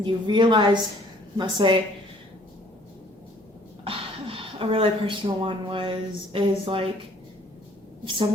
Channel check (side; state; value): both; normal; correlation 0.58